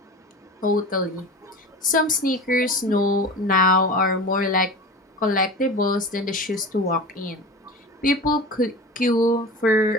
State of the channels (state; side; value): normal; both; correlation 0.33